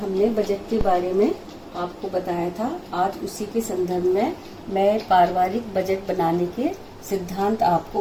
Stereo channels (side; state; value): both; identical; correlation 1.00